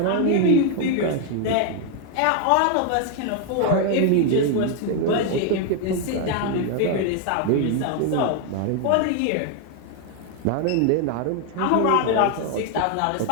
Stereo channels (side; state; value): both; different; correlation 0.01